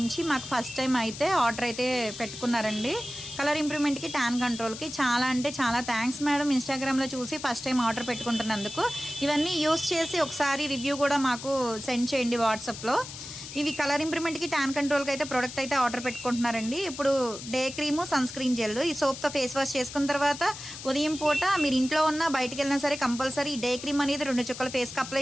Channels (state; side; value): noise; left; hiss, 11 dB below the sound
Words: మాకు ఫస్ట్ టైమ్ అయితే ఆర్డర్ అయితే పెట్టుకున్నారండి. Colour ఇంప్రూవ్‌మెంట్‌కి, tan కంట్రోల్‌కి. చాలా అంటే చాలా థాంక్స్ మేడం ఇన్‌స్టాగ్రామ్‌లో చూసి ఫస్ట్ టైమ్ ఆర్డర్ పెట్టుకుంటున్నందుకు. ఇవన్నీ యూజ్ చేసి ఒకసారి రివ్యూ కూడా మాకు సెండ్ చేయండి వాట్సాప్‌లో. ఇవి కలర్ ఇంప్రూవ్‌మెంట్‌కి, టాన్ కంట్రోల్‌కి అయితే ప్రొడక్ట్ అయితే ఆర్డర్ పెట్టుకుంటున్నారండి. ఇప్పుడు day cream, sunscreen gel ఈ సోప్‌తో ఫేస్ వాష్ చేసుకున్న తర్వాత ఉదయం పూట మీరు ఇంట్లో ఉన్నా బయటికెళ్ళినా సరే కంపల్సరీ డే క్రీమ్ అనేది 2 చుక్కలు ఫేస్‌కి